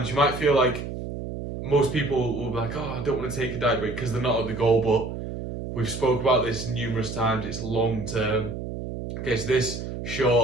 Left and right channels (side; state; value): right; noise; hum, 7 dB below the sound